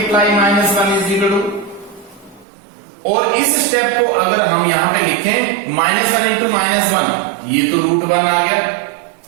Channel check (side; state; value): left; drops out; at 2.5 s